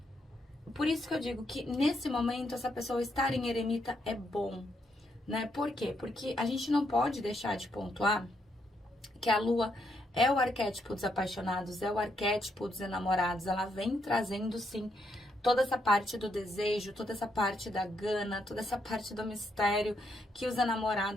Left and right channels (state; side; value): normal; both; correlation 0.77